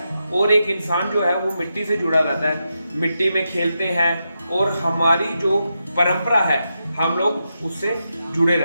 और एक इंसान जो है वो मिट्टी से जुड़ा रहता है। मिट्टी में खेलते हैं और हमारी जो परंपरा है हम लोग उससे जुड़े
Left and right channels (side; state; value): both; inverted; correlation -0.87